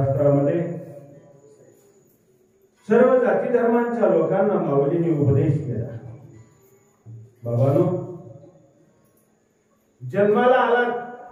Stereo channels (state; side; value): identical; both; correlation 1.00